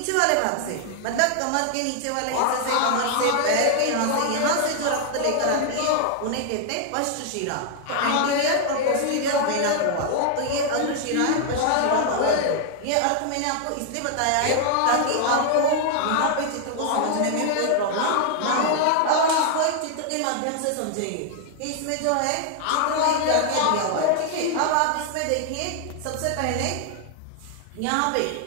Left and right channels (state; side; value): different; both; correlation 0.00